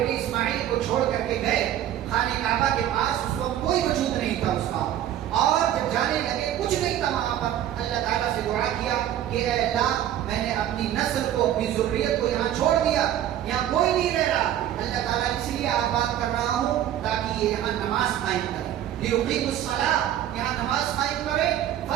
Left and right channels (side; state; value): left; quieter; 11.6 dB